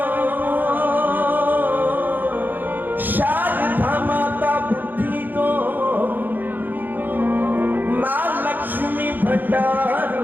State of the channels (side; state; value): left; late; 0.088 ms